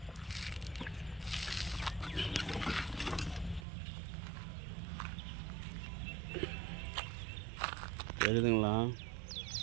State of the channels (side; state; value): left; drops out; at 3.7 s